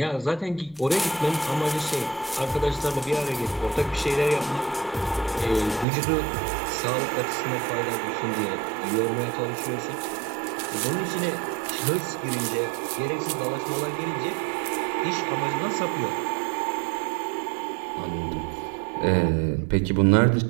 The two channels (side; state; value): left; drops out; at 5.9 s